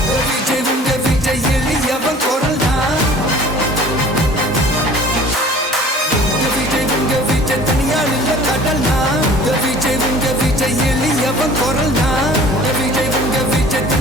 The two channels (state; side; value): normal; both; correlation 0.47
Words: விஜய் உங்க விஜய் எளியவன் குரல்னா விஜய் உங்க விஜய் தனியால் இல்ல கடல்னா விஜய் உங்க விஜய் எளியவன் குரல்னா விஜய் உங்க விஜய்